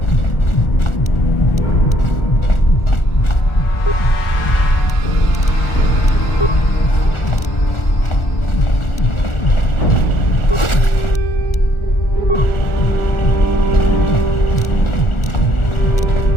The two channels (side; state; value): right; late; 1.4 ms